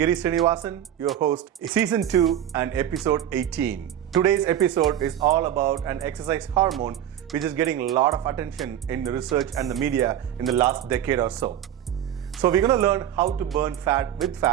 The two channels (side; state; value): left; quieter; 10.8 dB